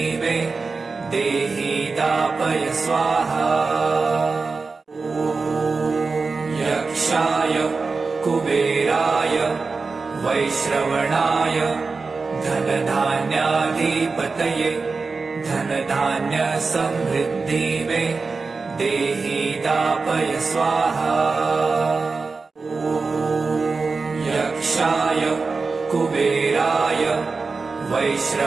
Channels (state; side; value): quieter; left; 4.3 dB